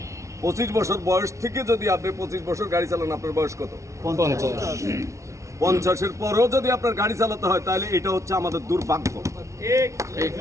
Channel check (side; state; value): left; late; 0.14 ms